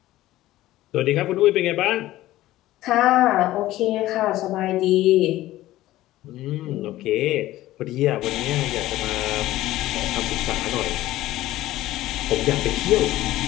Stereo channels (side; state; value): right; quieter; 15.7 dB